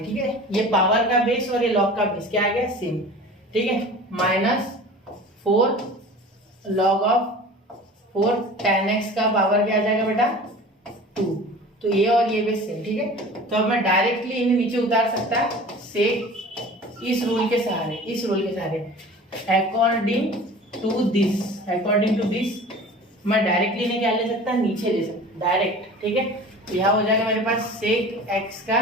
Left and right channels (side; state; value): both; normal; correlation 0.40